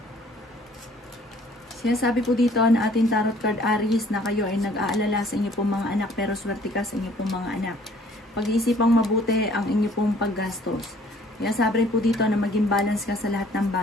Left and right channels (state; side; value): normal; both; correlation 0.57